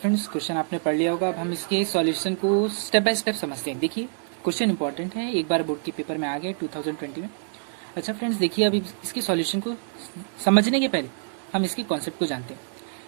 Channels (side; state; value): left; silent; digital silence